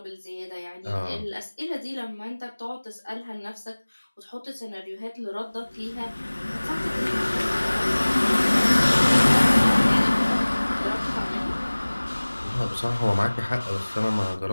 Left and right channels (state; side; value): inverted; both; correlation -1.00